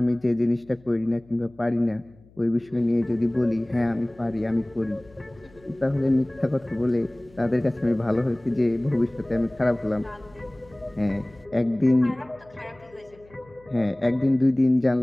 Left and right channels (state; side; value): noise; left; hum, 27 dB below the sound